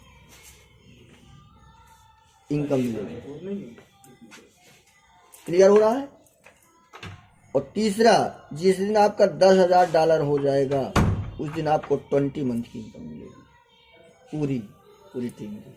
इनकम मिलेगी। क्लियर हो रहा है। और तीसरा जिस दिन आपका $10,000 हो जाएगा उस दिन आपको 20 मंथ की इनकम मिलेगी पूरी टीम की।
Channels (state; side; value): identical; both; correlation 1.00